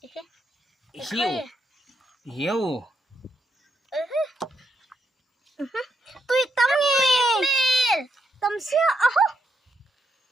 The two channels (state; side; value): normal; both; correlation 0.79